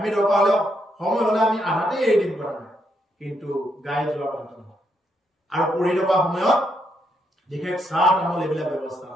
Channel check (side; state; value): both; normal; correlation 0.78